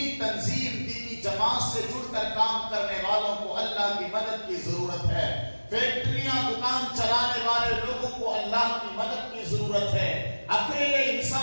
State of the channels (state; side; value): inverted; both; correlation -1.00